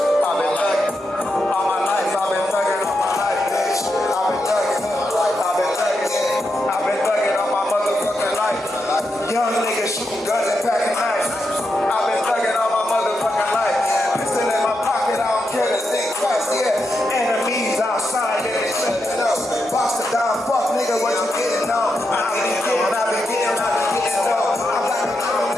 I've been thugging. All my life, I've been thugging all my life, bitch. I've been thugging. I've been thugging. I've been thugging all my motherfucking life. Young niggas shooting guns and packing knives. I've been thugging all my motherfucking life. Pistol in my pocket, I don't care to think twice, yeah. Enemies outside, yeah, they slipping up. Box the down, fuck nigga, what you getting on? I be getting on. I'm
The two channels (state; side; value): normal; both; correlation 0.85